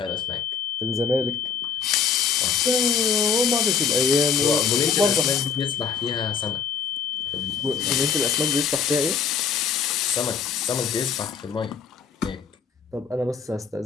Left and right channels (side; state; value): right; quieter; 6.6 dB